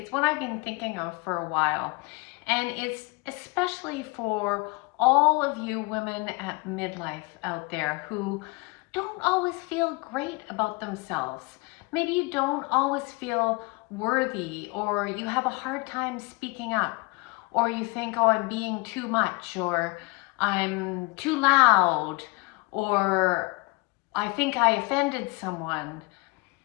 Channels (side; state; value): right; quieter; 27.6 dB